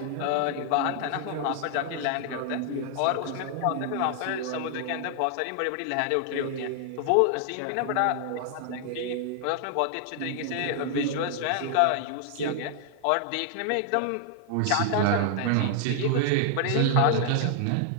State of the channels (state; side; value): different; both; correlation 0.00